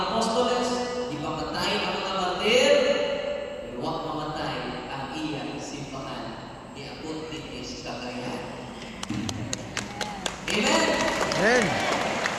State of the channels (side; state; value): both; identical; correlation 1.00